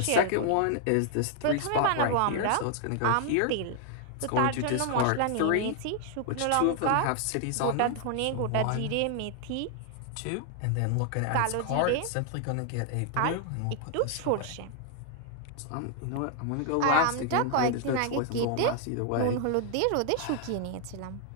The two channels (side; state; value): both; different; correlation 0.00